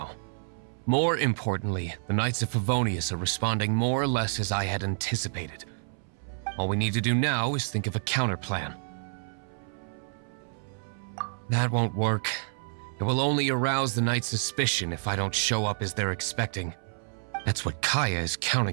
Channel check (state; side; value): silent; left; 59 dB below the other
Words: More importantly, the Knights of Favonius are responding more or less as I had anticipated. All we need to do now is think of a counterplan. That won't work. It will only arouse the Knights' suspicion if I don't show up as they're expecting. That's what Kaya is